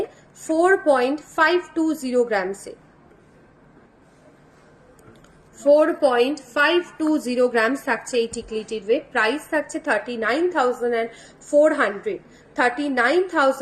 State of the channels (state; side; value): identical; both; correlation 1.00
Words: 4.520 গ্রামসে, 4.520 গ্রামস থাকছে এই টিকলিটির ওয়েট। প্রাইস থাকছে 39,400,